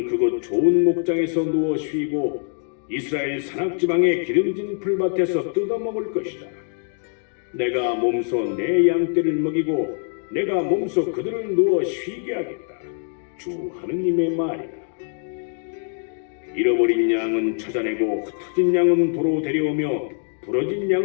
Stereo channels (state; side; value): silent; right; 60 dB below the other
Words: 그곳 좋은 목장에서 누워 쉬고 이스라엘 산악지방의 기름진 풀밭에서 뜯어먹을 것이다. 내가 몸소 내 양떼를 먹이고 내가 몸소 그들을 누워 쉬게 하겠다. 주 하느님의 말이다. 잃어버린 양은 찾아내고 흩어진 양은 도로 데려오며 부러진